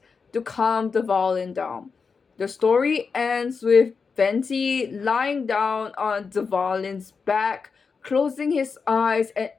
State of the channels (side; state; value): right; quieter; 5.2 dB